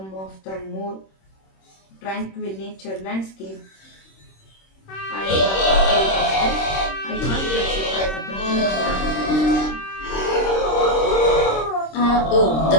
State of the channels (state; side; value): late; right; 26 ms